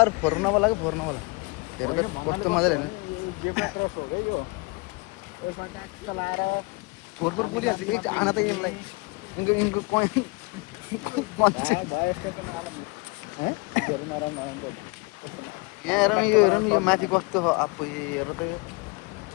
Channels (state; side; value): quieter; right; 28.4 dB